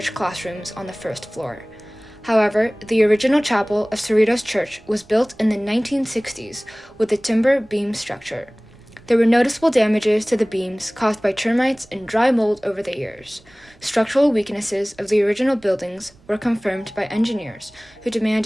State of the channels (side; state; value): right; noise; rumble, 28 dB below the sound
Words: classrooms on the first floor. However, the original chapel of Cerritos Church was built in the 1960s with a timber beam structure. There were noticeable damages to the beams caused by termites and dry mold over the years. Structural weaknesses of the original buildings were confirmed by engineers who